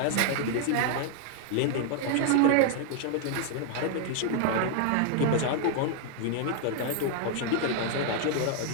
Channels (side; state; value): both; different; correlation 0.00